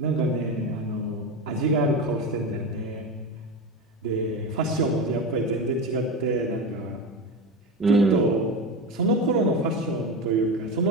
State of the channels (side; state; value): both; normal; correlation 0.20